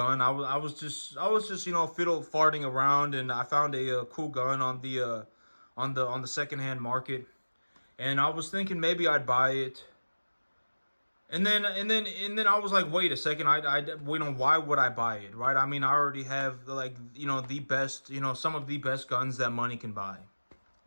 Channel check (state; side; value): inverted; both; correlation -1.00